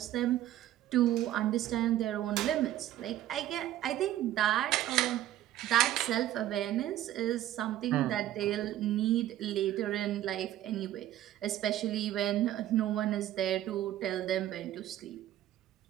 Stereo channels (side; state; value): left; quieter; 13.0 dB